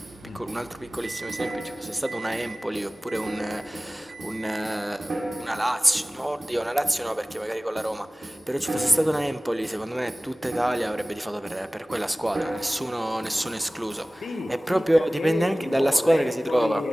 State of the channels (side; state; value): both; normal; correlation 0.98